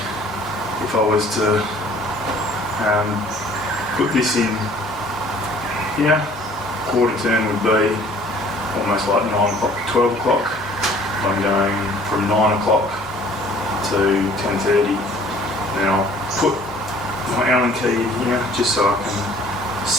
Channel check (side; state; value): both; normal; correlation 0.54